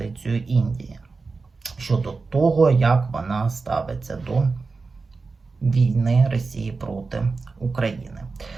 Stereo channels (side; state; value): left; quieter; 4.2 dB